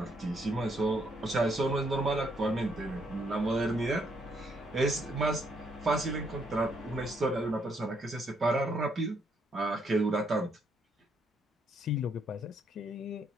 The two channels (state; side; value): normal; both; correlation 0.72